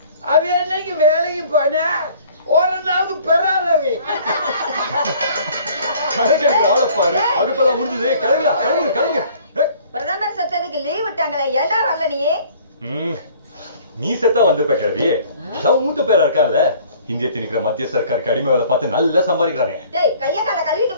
அவ என்னைக்கு வேலைக்கு போன ஒரு நாளுக்கு பெறாதவி. பாரு அதுப்பெல்லாம் முடிஞ்சது. கிளம்புங்க கிளம்புங்க கிளம்புங்க. பிரதமர் சத்தத்துக்கு லீவ் விட்டாங்களே, ஏண்டா வரல நீ? நீ செத்தா வந்திருப்ப கிழவி. மூத்த பேரா இருக்கால, இந்திய திணிக்கிற மத்திய சர்க்காருக்கு அடிமை வேலை பார்த்து நல்லா சம்பாதிக்கிறானே. டேய் கைய கால கழுவிட்டு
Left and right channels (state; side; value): inverted; both; correlation -0.54